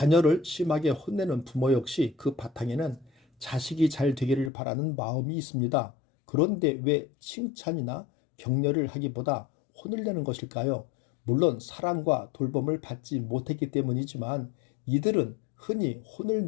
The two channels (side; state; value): right; drops out; at 4.5 s